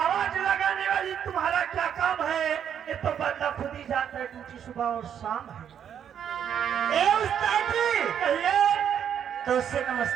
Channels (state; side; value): quieter; left; 8.8 dB